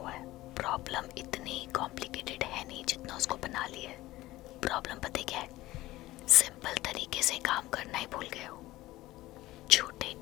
है। प्रॉब्लम इतनी कॉम्प्लिकेटेड है नहीं जितना उसको बना लिया है। प्रॉब्लम पता क्या है? सिंपल तरीके से काम करना ही भूल गए हो। छोटे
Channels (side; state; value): right; quieter; 17.4 dB